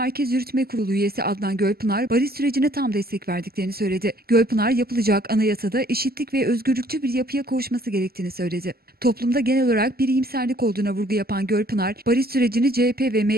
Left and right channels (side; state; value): left; late; 0.45 ms